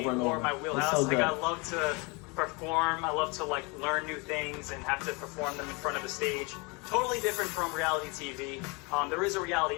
and over. It's so good. Like, I love to perform. I love to like learn new things and have to perform them in front of a stage. Totally different from reality TV. There is a reality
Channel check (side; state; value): right; quieter; 29.2 dB